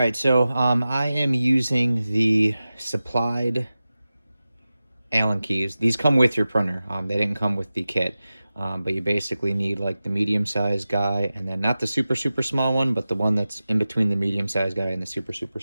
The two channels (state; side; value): inverted; both; correlation -0.95